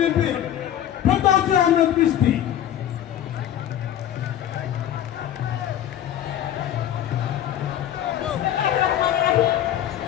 ফেরদৌসী আহমেদ মিষ্টি।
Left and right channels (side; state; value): right; quieter; 11.2 dB